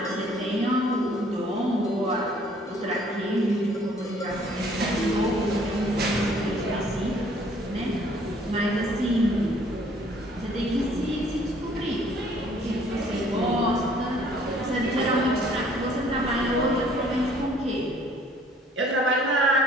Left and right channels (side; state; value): both; normal; correlation 0.58